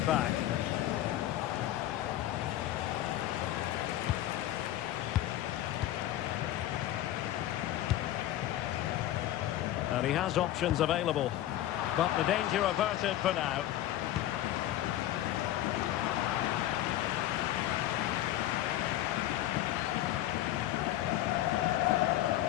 back. And he has options available. But the danger averted for now.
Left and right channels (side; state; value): right; quieter; 13.6 dB